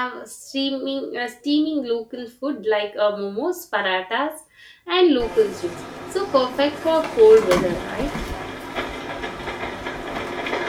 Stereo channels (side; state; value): both; identical; correlation 1.00